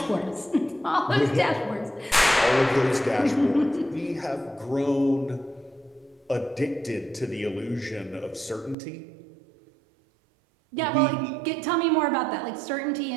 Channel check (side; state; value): left; drops out; at 8.8 s